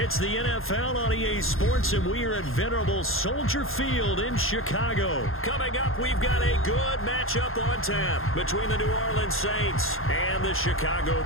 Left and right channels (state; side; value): late; right; 0.60 ms